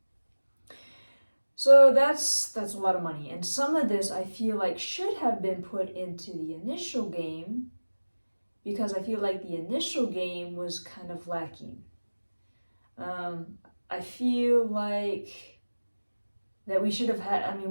So that's a lot of money, and some of this I feel like should have been put into the initial game, because I feel like the initial game was kind of lacking. I feel like that we should have had,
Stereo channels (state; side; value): inverted; both; correlation -1.00